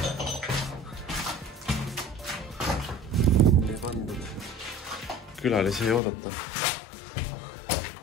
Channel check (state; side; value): drops out; right; at 6.0 s